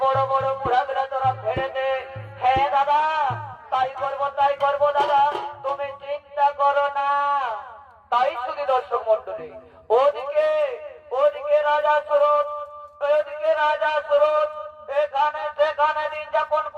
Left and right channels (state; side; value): identical; both; correlation 1.00